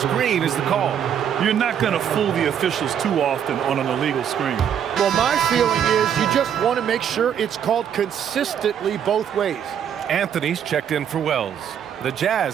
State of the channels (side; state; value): left; quieter; 8.8 dB